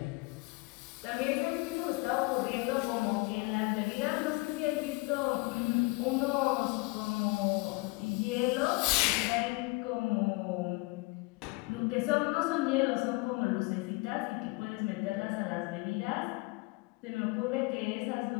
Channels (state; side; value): quieter; right; 26.1 dB